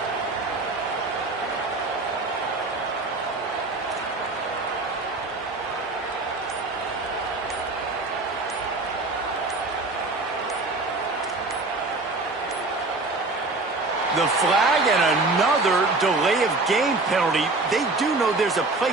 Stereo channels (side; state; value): left; quieter; 3.3 dB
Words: The flag and another delay of game penalty. They do know there's a play